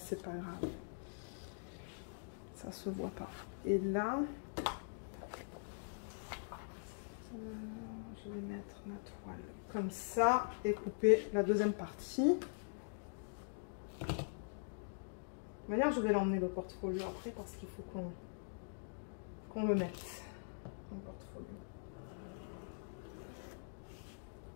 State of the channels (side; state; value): right; silent; digital silence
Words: pas grave. Ça se voit pas. Et là, je vais mettre ma toile comme ça et couper la deuxième partie. De toute manière, je vais l'emmener le portfolio après parce qu'il faut qu'on le mette dans le portfolio.